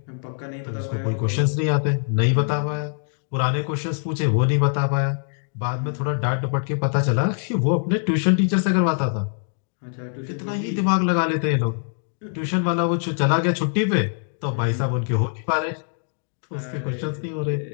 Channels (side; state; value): right; silent; digital silence